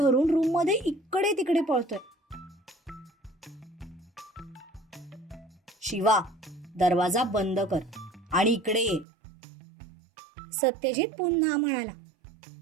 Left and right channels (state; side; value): drops out; left; at 9.1 s